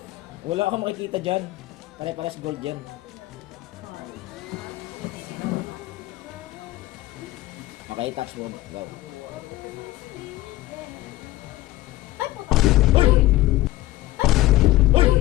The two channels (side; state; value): right; quieter; 17.2 dB